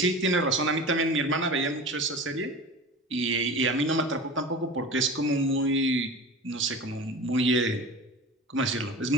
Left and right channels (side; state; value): both; normal; correlation 0.33